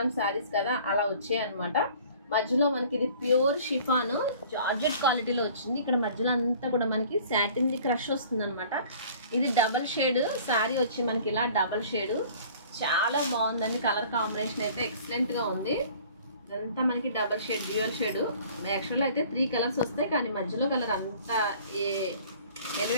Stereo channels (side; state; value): both; inverted; correlation -0.50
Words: శారీస్ కదా, అలా వచ్చాయి అనమాట. మధ్యలో మనకి ఇది ప్యూర్ షిఫాన్ జార్జెట్ క్వాలిటీలో వచ్చింది. ఇక్కడ మధ్యలో అంతా కూడా మనకి సాటిన్ క్రష్ వస్తుంది అనమాట. ఇది డబల్ షేడ్ శారీ వచ్చి మనకి ఇలా డబల్ షేడ్ చాలా బాగుందండి. కలర్ కాంబినేషన్ అయితే ఎక్సలెంట్గా ఉంది. ఇదంతా మనకి డబల్ షేడ్ డ్యూయల్ షేడ్. యాక్చువల్గా అయితే 3 కలర్స్ వస్తాయి, కానీ మధ్యలో కలర్ అంత